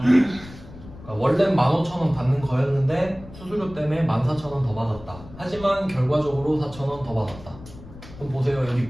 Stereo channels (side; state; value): left; noise; rumble, 17 dB below the sound